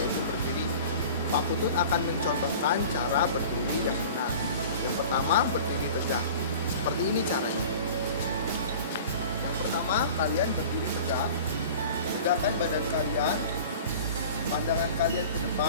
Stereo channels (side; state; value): both; inverted; correlation -0.41